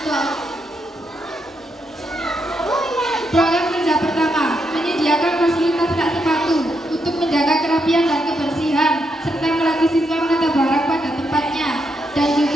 Program kerja pertama, menyediakan fasilitas rak sepatu untuk menjaga kerapian dan kebersihan, serta melatih siswa menata barang pada tempatnya, dan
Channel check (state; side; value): normal; both; correlation 0.80